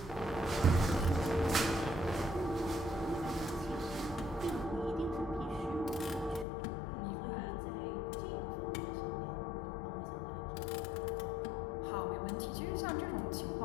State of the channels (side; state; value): right; drops out; at 6.5 s